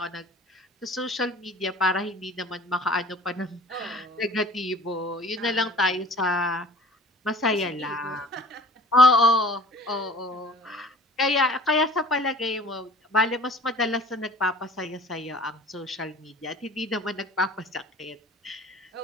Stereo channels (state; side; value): normal; both; correlation 0.46